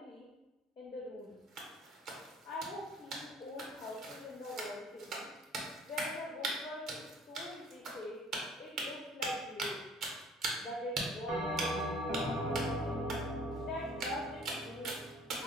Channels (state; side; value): normal; both; correlation 0.52